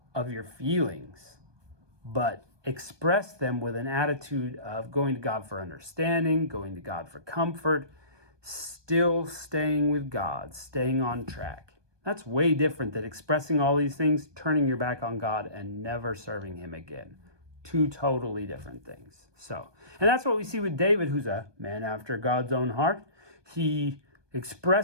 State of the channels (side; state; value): left; late; 1.2 ms